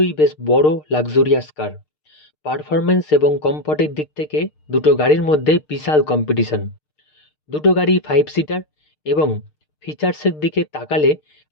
বেশ বড় লাক্সারিয়াস কার। পারফরমেন্স এবং কমফর্টের দিক থেকে দুটো গাড়ির মধ্যে বিশাল কম্পিটিশন। দুটো গাড়ি 5 সিটার এবং ফিচার্সের দিকে তাকালে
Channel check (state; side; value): late; right; 6.6 ms